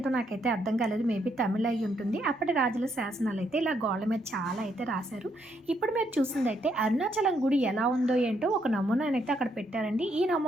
నాకైతే అర్థం కాలేదు. మేబీ తమిళ్ అయ్యుంటుంది. అప్పటి రాజుల శాసనాలైతే ఇలా గోడల మీద చాలా అయితే రాశారు. ఇప్పుడు మీరు చూసిందైతే అరుణాచలం గుడి ఎలా ఉందో ఏంటో ఒక నమూనానైతే అక్కడ పెట్టారండి. ఈ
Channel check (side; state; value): both; normal; correlation 0.74